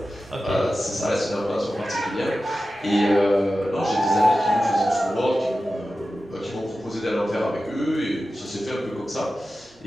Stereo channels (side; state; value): both; normal; correlation 0.94